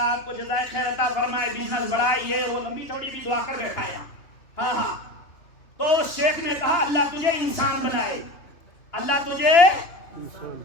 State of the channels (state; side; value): late; right; 2.9 ms